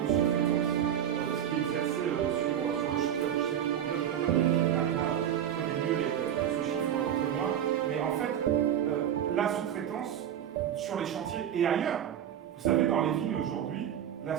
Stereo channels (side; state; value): left; quieter; 10.1 dB